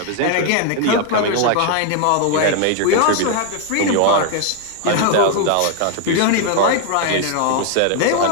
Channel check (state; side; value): different; both; correlation 0.01